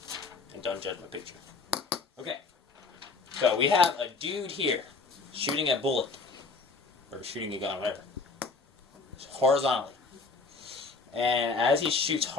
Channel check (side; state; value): right; quieter; 4.2 dB